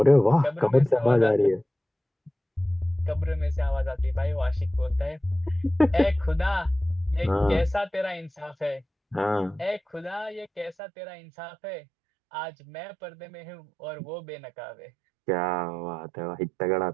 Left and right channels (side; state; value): left; drops out; at 10.8 s